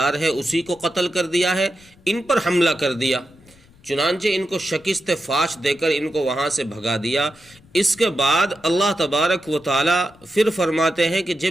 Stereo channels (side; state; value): left; noise; rumble, 28 dB below the sound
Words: ہے، اسی کو قتل کر دیا ہے، ان پر حملہ کر دیا، چنانچہ ان کو شکست فاش دے کر ان کو وہاں سے بھگا دیا۔ اس کے بعد اللہ تبارک و تعالی پھر فرماتے ہیں کہ